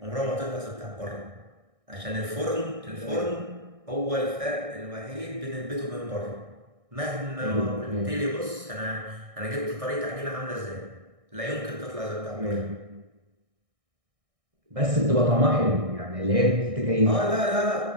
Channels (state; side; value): late; left; 1.6 ms